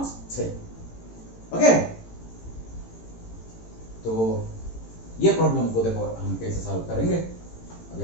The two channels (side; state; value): right; late; 18 ms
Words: 6। ओके, तो ये प्रॉब्लम को देखो हम कैसे सॉल्व करेंगे। अभी